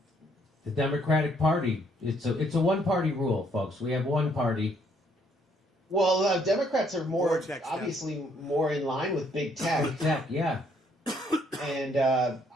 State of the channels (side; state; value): both; normal; correlation 0.68